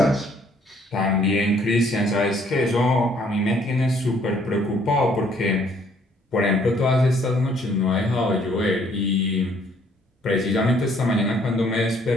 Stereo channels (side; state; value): both; normal; correlation 0.63